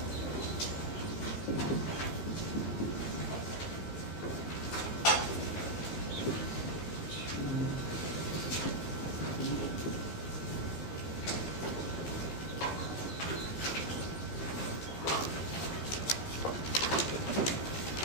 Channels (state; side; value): late; right; 15 ms